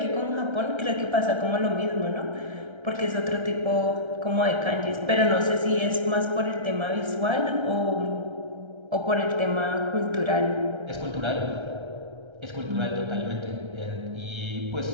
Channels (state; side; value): late; left; 1.3 ms